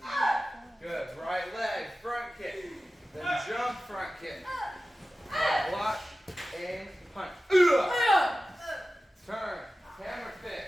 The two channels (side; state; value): both; normal; correlation 0.95